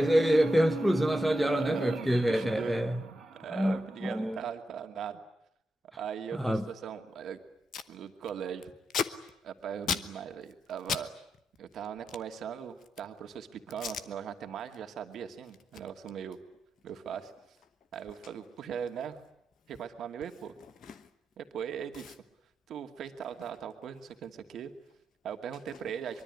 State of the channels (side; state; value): both; normal; correlation 0.87